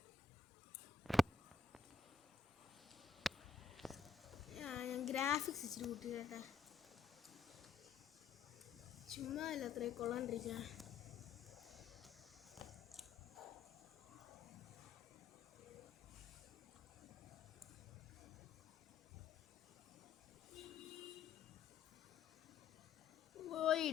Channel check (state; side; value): quieter; right; 5.4 dB